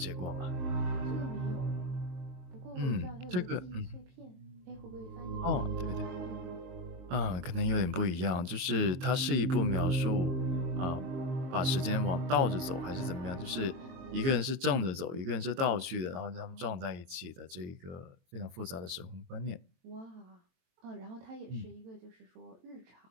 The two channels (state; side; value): late; left; 23 ms